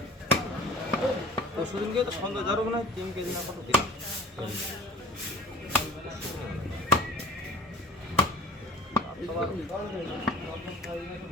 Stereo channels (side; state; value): both; normal; correlation 0.42